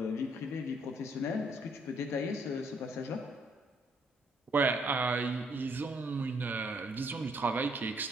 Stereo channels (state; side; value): normal; both; correlation 0.68